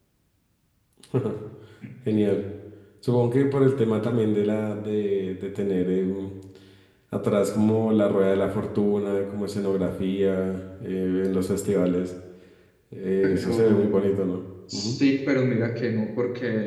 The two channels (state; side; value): identical; both; correlation 1.00